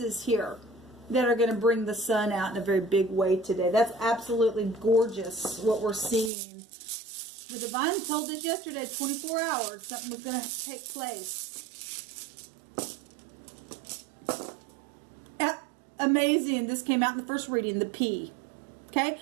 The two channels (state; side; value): drops out; left; at 6.3 s